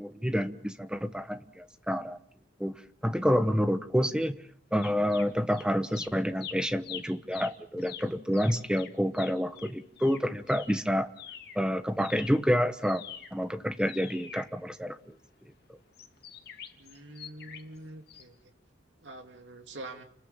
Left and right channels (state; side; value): normal; both; correlation 0.93